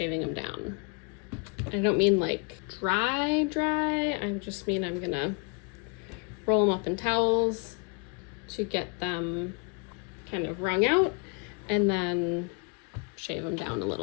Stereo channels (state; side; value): quieter; right; 31.9 dB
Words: them down. I don't mean like dry, I just mean I'm gonna roll them up in towels to get them kind of wrung out and then shave them down a